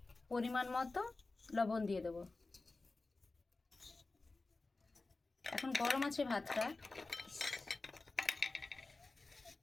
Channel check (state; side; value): quieter; right; 3.5 dB